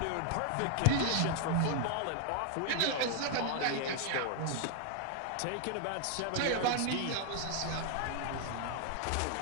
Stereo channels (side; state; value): both; different; correlation 0.00